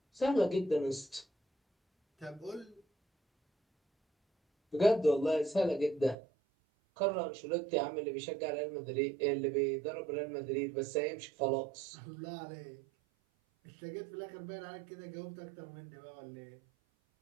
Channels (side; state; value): left; drops out; at 6.2 s